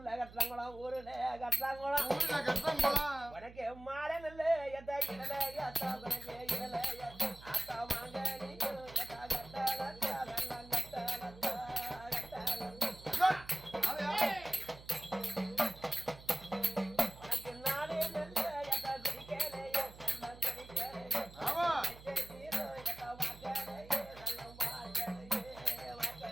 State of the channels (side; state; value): right; noise; hum, 18 dB below the sound